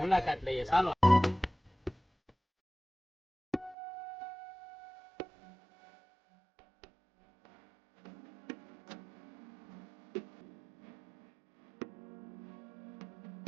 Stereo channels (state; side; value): drops out; left; at 3.8 s